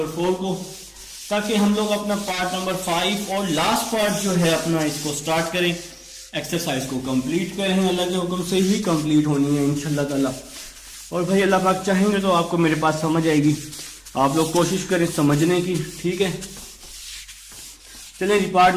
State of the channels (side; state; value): both; identical; correlation 1.00